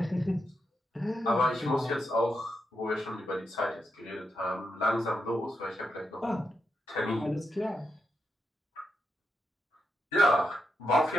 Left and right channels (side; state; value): both; normal; correlation 0.85